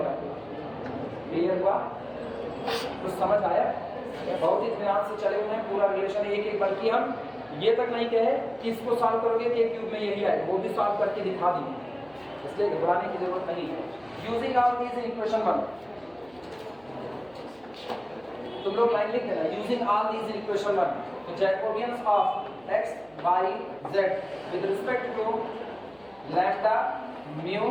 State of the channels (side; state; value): right; noise; hum, 30 dB below the sound